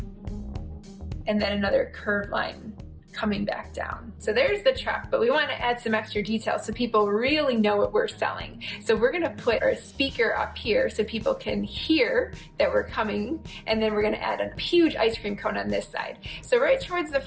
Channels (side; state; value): both; identical; correlation 1.00